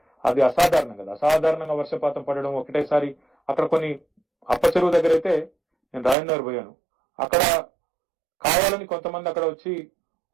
అది అసాధారణం కదా. అసాధారణంగా వర్షపాతం పడడం ఒకటేసారి. అక్కడ కొన్ని అప్ప చెరువు దగ్గర అయితే నేను రాజేంద్ర పోయాను, అక్కడ కావాలని కొంతమంది అక్కడ వచ్చి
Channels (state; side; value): drops out; left; at 6.2 s